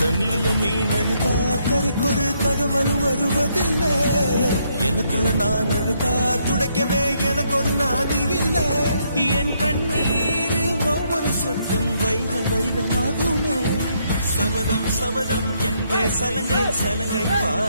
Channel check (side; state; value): both; inverted; correlation -0.74